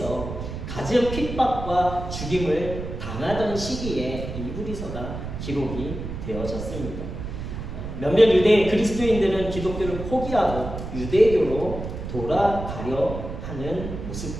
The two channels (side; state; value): right; noise; rumble, 7 dB below the sound